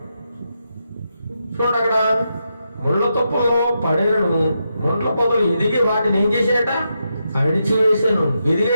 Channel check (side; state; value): both; inverted; correlation -0.84